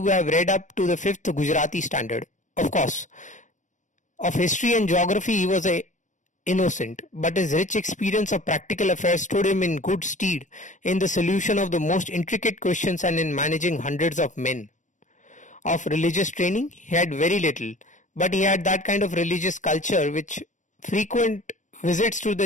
have read up to the 5th Gujarati standard. Of course, of history and geography he was innocent, but his rich experience of practical affairs stood him in good stead in the solution of the most intricate questions and in managing hundreds of men. Of religious training he had very little, but he had that kind of religious culture which frequent visits to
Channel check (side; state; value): right; late; 0.36 ms